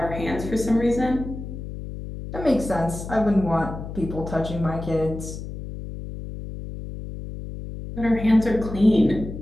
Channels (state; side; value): noise; left; hum, 9 dB below the sound